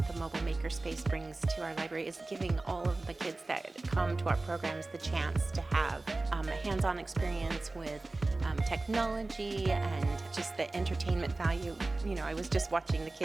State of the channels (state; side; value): quieter; left; 3.2 dB